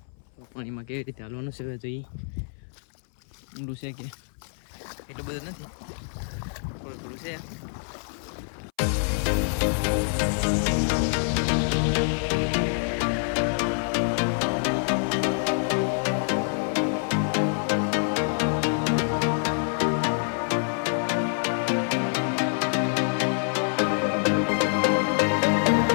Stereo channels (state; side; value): silent; right; 61 dB below the other